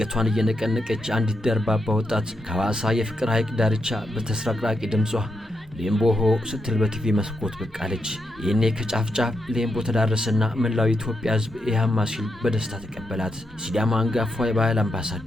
እየነቀነቀች አንዲት ደርባባ ወጣት ከሐዋሳ የፍቅር ሐይቅ ዳርቻ በተስራቅራቂ ድምጿ ሌምቦሆ ስትል በቲቪ መስኮት ብቅ አለች። ይህኔ ከጫፍ ጫፍ ሌምቦ ተዳረሰና መላው ኢትዮጵያ ሕዝብ ኢሃማ ሲል በደስታ ተቀበላት። ሲዳማ አንጋፋ የባህል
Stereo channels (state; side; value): normal; both; correlation 0.83